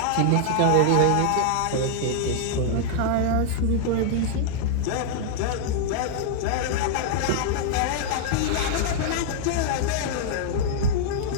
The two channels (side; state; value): both; different; correlation -0.01